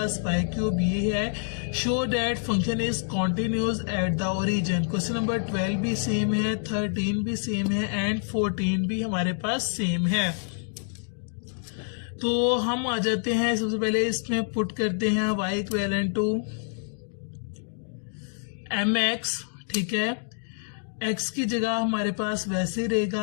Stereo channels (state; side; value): silent; right; digital silence